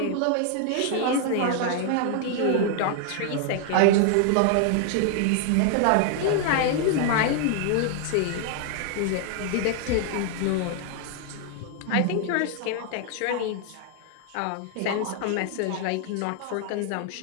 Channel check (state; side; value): different; both; correlation 0.00